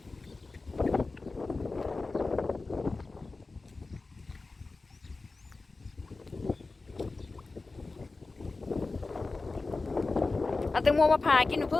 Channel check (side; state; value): right; quieter; 3.6 dB